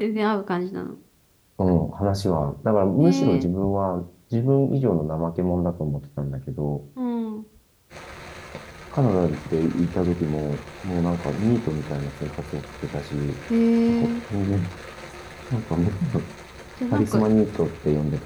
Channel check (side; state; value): both; identical; correlation 1.00